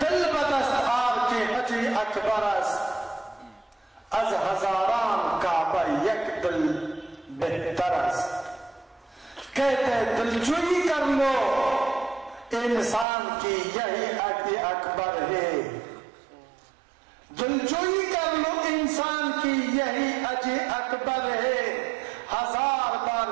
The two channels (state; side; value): drops out; left; at 13.1 s